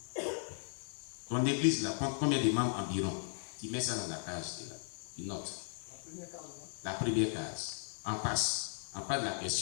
Ton église là compte combien de membres environ? Tu mets ça dans la case, là. Tu notes. La première case. En face. En face de la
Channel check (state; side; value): silent; right; 53 dB below the other